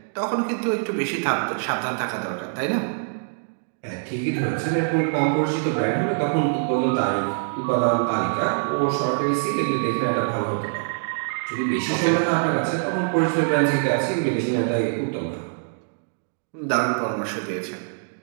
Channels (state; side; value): silent; left; digital silence